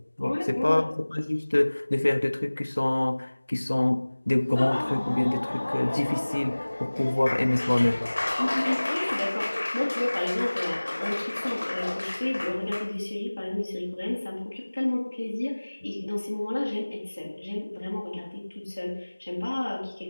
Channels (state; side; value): inverted; both; correlation -1.00